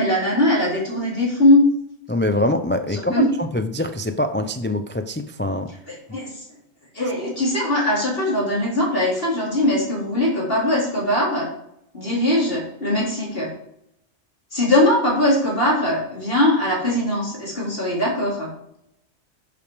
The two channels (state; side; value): normal; both; correlation -0.11